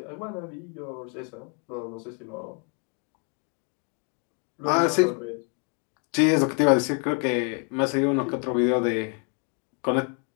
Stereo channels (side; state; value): right; quieter; 37.8 dB